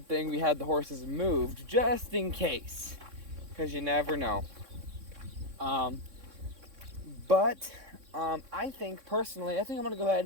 thing we had the horses moved, just in case, because you never know. I think personally, I think I'm going to go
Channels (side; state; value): left; late; 3.6 ms